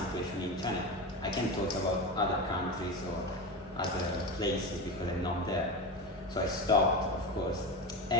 in China. I can talk about other countries or other places because I'm not there. So I stopped, of course.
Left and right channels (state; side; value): normal; both; correlation 0.22